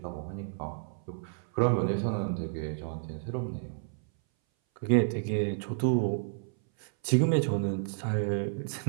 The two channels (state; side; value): silent; left; 57 dB below the other